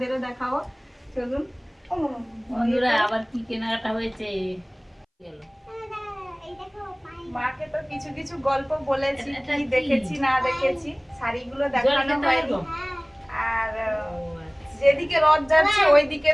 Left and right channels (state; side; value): identical; both; correlation 1.00